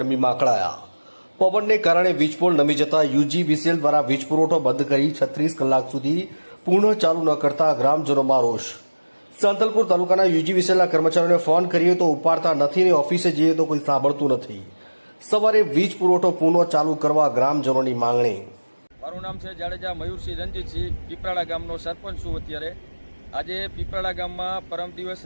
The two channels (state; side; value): inverted; both; correlation -1.00